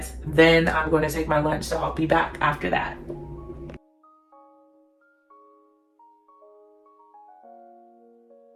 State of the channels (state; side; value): identical; both; correlation 1.00